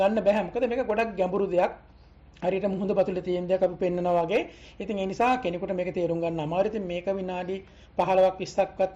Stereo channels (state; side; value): identical; both; correlation 1.00